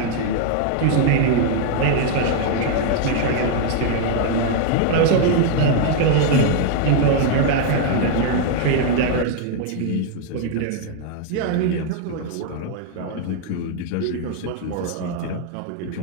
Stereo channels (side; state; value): both; different; correlation 0.00